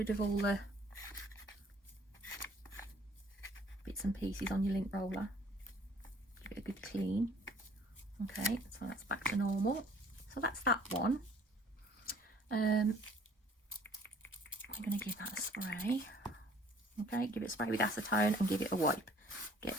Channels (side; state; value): both; normal; correlation 0.56